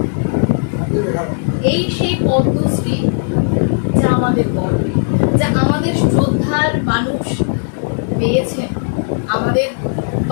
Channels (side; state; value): right; silent; digital silence